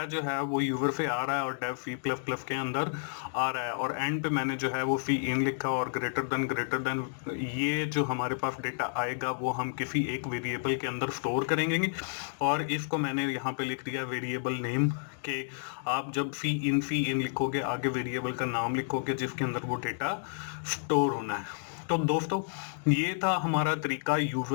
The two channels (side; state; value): right; silent; digital silence